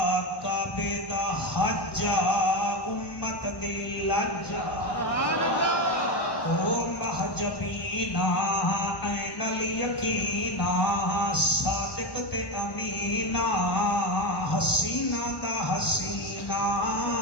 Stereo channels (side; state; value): right; late; 1.1 ms